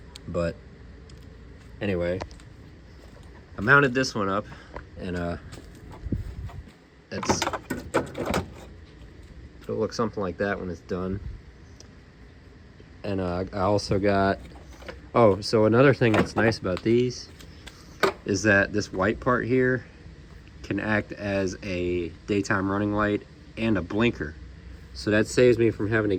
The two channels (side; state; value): both; identical; correlation 1.00